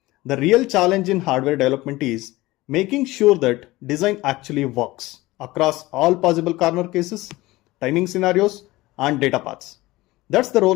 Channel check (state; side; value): quieter; right; 19.3 dB